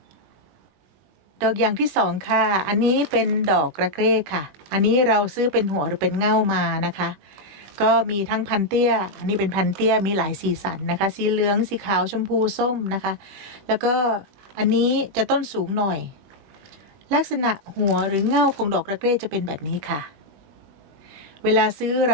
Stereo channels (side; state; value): left; late; 20 ms